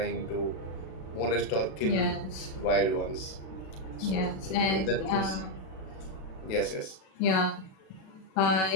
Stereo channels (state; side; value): late; right; 37 ms